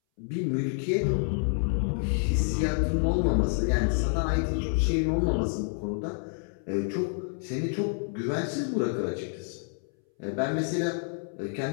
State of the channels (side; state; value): right; silent; 59 dB below the other